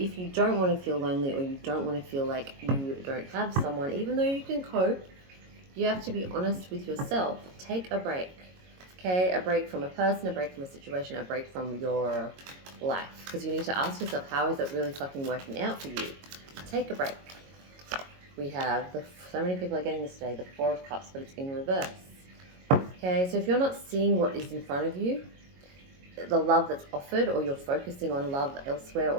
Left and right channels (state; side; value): late; left; 22 ms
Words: you don't want to feel lonely, or you don't want to feel like you don't have someone, even though you can cope, you have to be honest with yourself. Take a break. Okay, a break from a person, a break from a situation, a break from your life. Because you need to ask yourself, how is it really fucking working out for you? Take a break. We have, so many people are getting this today, the Four of Cups, but it's in reverse. Okay, so if you're not seeing what is in front of you, the love that's offered, or you're focusing on love elsewhere